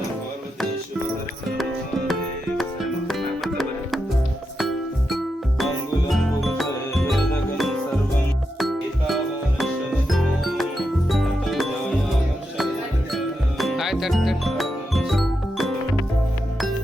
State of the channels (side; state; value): both; normal; correlation 0.86